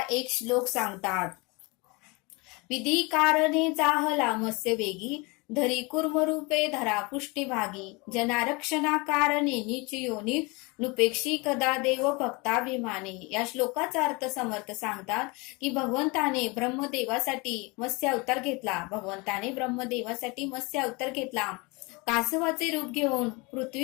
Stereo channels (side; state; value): right; quieter; 27.0 dB